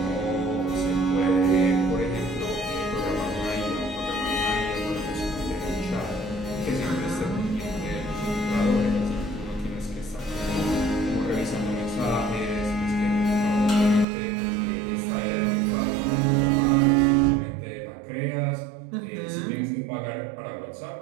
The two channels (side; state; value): left; drops out; at 14.1 s